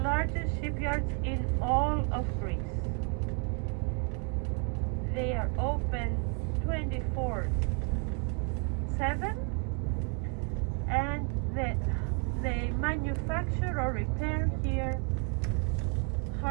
largest shipyards in all of Greece. They are open 24/7, and they manufacture or repair here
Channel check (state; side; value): quieter; left; 36.8 dB